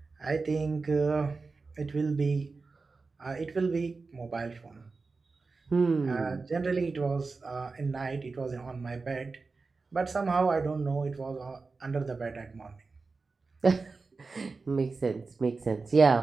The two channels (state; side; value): quieter; left; 4.1 dB